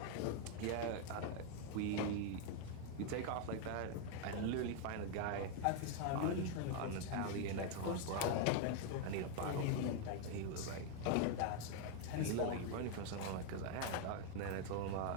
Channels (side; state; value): both; different; correlation 0.01